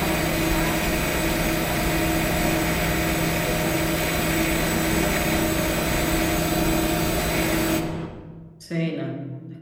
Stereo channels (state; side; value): identical; both; correlation 1.00